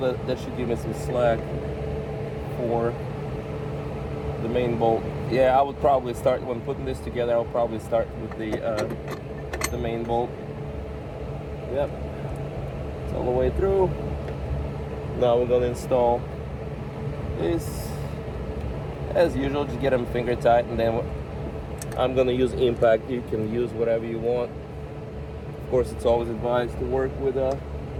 That should give me some slack for the main bolt. Yeah, I would probably start when putting this together. I'll probably start with the main bolt. Yep, it's all the way through. Now we're gonna install this. As usual, just get them finger tight, and then I'm gonna use impact. You can use whatever you want. Of course, it's always advised to work with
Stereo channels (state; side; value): identical; both; correlation 1.00